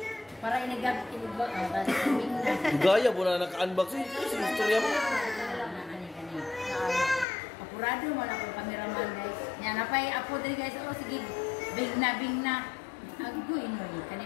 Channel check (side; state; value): right; drops out; at 7.2 s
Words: Para inigab tapos kaming na. Gaya mo na naka-unboxing. Istorya mo. Apurado mo lang ang cameraman guys. Yan, napay apo dali guys. Oh, sige. Big na. Agoy no. Kani